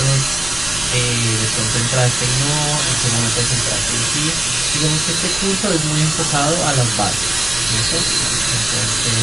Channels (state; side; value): noise; right; rumble, 14 dB below the sound